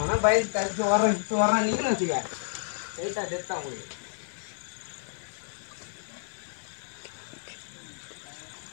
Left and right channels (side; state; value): right; silent; 58 dB below the other